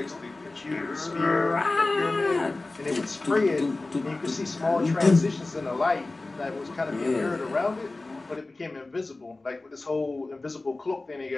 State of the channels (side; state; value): right; quieter; 3.2 dB